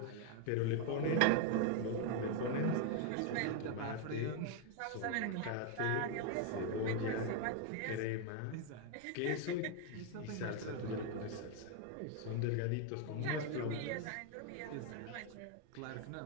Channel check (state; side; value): different; both; correlation 0.01